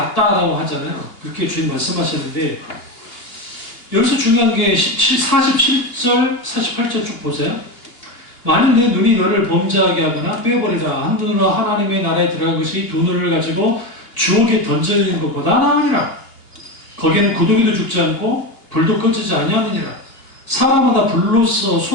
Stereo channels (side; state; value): right; late; 2.8 ms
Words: 하잖아요. 그렇게 주님 말씀하셨는데, 여기서 중요한 게 47절, 48절 쭉 보세요. 만일 내 눈이 너를 범죄하게 하거나 빼버리라. 한 눈으로 하나님의 나라에 들어간 것이 두 눈을 가지고 주옥에 던져지는 것보다 나으니라. 거기는 구더기도 죽지 않고 불도 꺼지지 아니하느니라. 사람마다 불로써